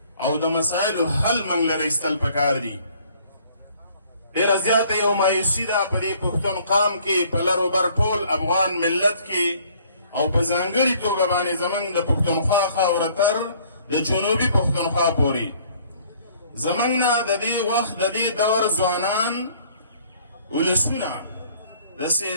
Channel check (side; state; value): both; inverted; correlation -0.58